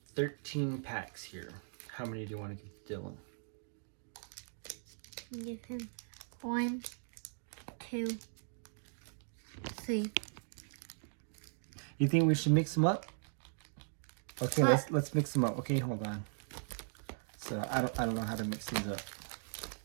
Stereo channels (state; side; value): silent; left; digital silence